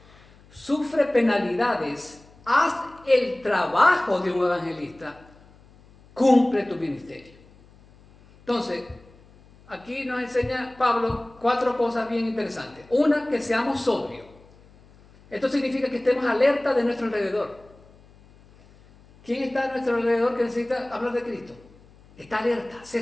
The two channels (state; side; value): noise; left; hum, 26 dB below the sound